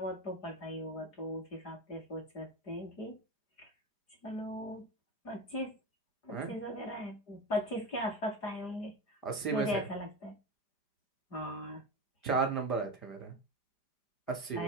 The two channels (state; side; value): late; right; 5.0 ms